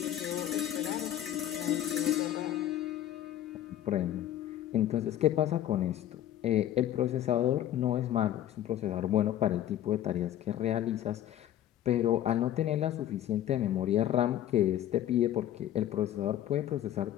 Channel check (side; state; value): right; quieter; 12.0 dB